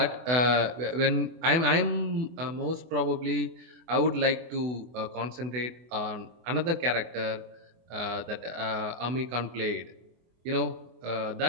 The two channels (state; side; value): late; left; 24 ms